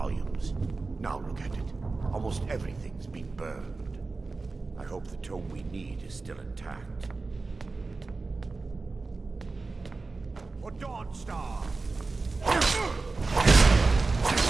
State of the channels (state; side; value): quieter; left; 3.8 dB